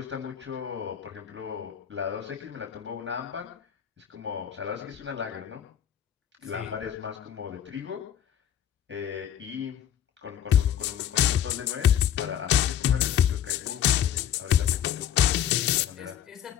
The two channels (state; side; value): quieter; right; 10.0 dB